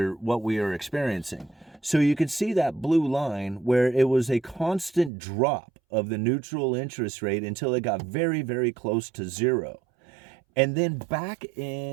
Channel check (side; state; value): left; drops out; at 5.1 s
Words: are experiencing. So you can see that blue line where it was a constant drop of the neutral interest rate until it got very, very close to zero. And then back